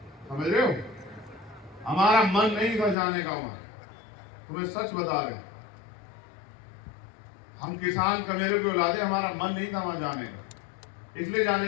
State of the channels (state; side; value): drops out; right; at 3.0 s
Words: समझ रहे हो? हमारा मन नहीं था जाने का वहां, तुम्हें सच बता रहे। हम किसान कमेरे के औलादे, हमारा मन नहीं था वहां जाने का। इसलिए